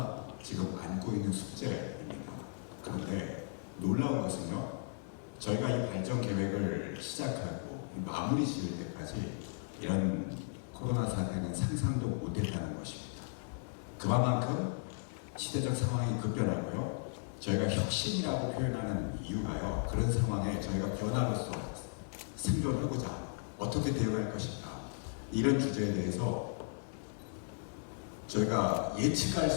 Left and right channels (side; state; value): right; silent; digital silence